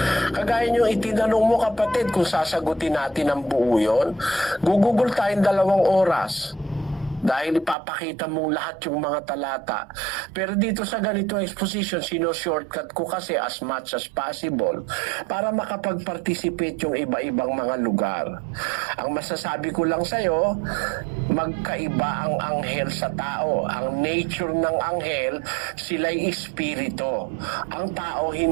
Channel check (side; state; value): left; drops out; at 7.8 s